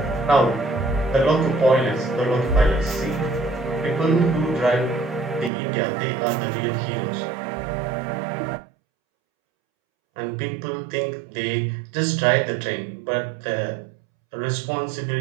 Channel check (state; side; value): drops out; left; at 5.5 s